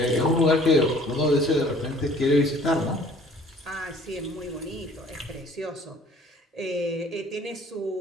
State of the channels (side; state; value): both; normal; correlation 0.53